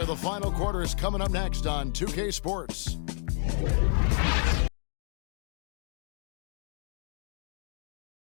The final quarter is coming up next on 2K Sports.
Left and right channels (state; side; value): silent; right; digital silence